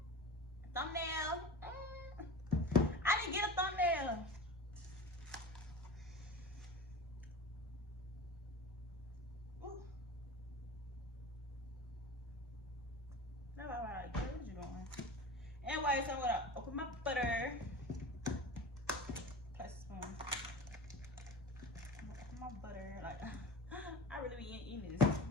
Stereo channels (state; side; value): normal; both; correlation 0.33